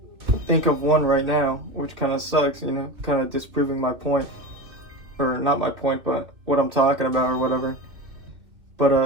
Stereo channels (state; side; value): late; left; 2.3 ms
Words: think of one right now, which kind of sucks. You know, kind of disproving my point, or not my point, but what I'm talking about or whatever.